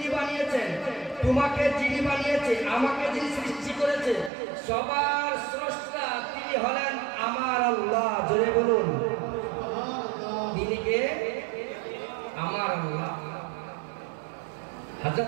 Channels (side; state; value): left; drops out; at 4.3 s